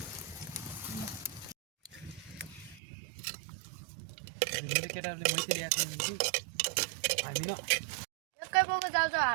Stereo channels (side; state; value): left; drops out; at 2.8 s